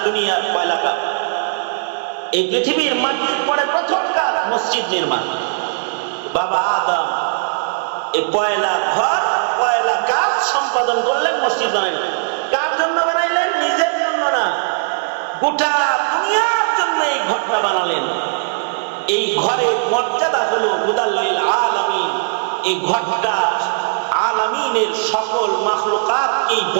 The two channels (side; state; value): left; silent; digital silence